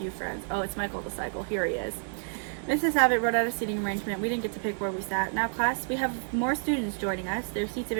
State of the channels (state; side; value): silent; left; digital silence